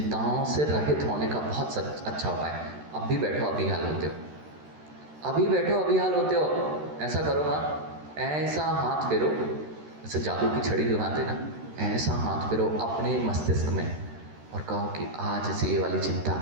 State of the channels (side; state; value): left; late; 13 ms